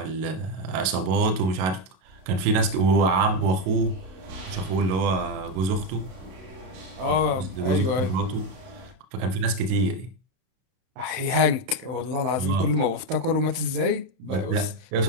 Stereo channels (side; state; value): left; late; 32 ms